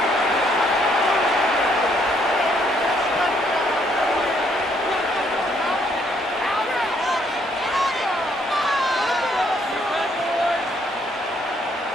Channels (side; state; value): both; normal; correlation 0.69